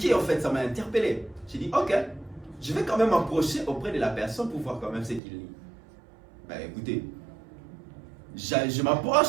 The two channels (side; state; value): left; drops out; at 5.2 s